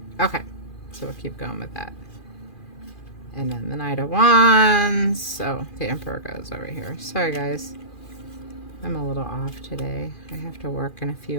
Okay, so we'll keep going with that. And then the Knight of Wands. So the Emperor goes over here. Sorry, guys. I'm a little off today. I have to work in a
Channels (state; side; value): late; right; 2.4 ms